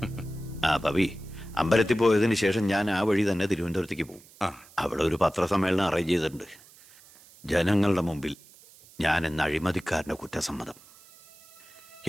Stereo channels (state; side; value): noise; right; hiss, 24 dB below the sound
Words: ആ പവി, അമ്പലത്തിൽ പോയതിന് ശേഷം ഞാൻ ആ വഴി തന്നെ തിരുവനന്തപുരത്തേക്ക് പോകും. അവിടെ ഒരു പത്രസമ്മേളനം അറേഞ്ച് ചെയ്തിട്ടുണ്ട്. ജനങ്ങളുടെ മുമ്പിൽ ഞാൻ എന്ന അഴിമതിക്കാരന്റെ കുറ്റസമ്മതം.